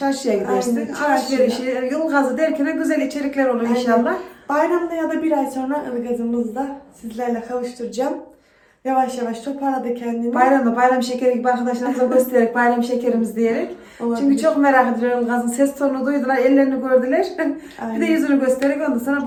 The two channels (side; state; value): both; identical; correlation 1.00